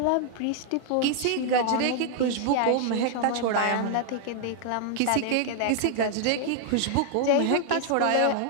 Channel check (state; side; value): different; both; correlation 0.00